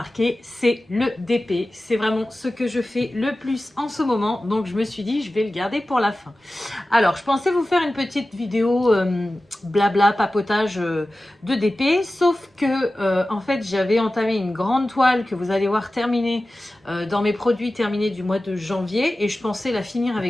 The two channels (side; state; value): both; normal; correlation 0.95